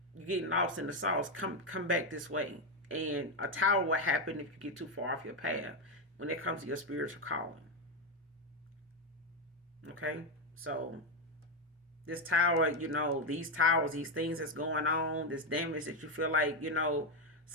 you're getting lost in the sauce. Come back this way." And a tower will happen if you get too far off your path when it comes to your spiritual calling. Okay, so this tower, these towers, these things that's going on, this damage that you feel like,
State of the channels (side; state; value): both; normal; correlation 0.07